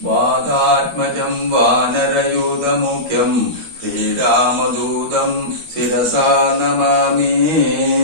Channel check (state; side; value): late; left; 13 ms